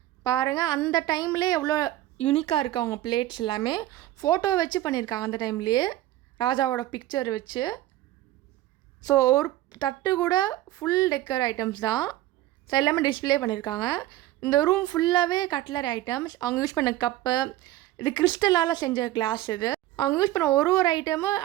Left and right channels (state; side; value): quieter; left; 15.1 dB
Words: பாருங்கள் அந்த டைம்லேயே எவ்வளோ யூனிக்காக இருக்குது. அவங்க பிளேட்ஸ் எல்லாமே ஃபோட்டோ வச்சு பண்ணியிருக்காங்க அந்த டைம்லேயே, ராஜாவோட பிக்சர் வச்சு. ஸோ ஒரு தட்டு கூட ஃபுல் டெக்கர் ஐட்டம்ஸ் தான். ஸோ எல்லாமே டிஸ்பிளே பண்ணியிருக்காங்க. இந்த ரூம் ஃபுல்லாகவே கட்லரி ஐட்டம்ஸ். அவங்க யூஸ் பண்ண கப்பு, இது கிறிஸ்டலால் செஞ்ச கிளாஸ். இது அவங்க யூஸ் பண்ண ஒரு ஐட்டமும்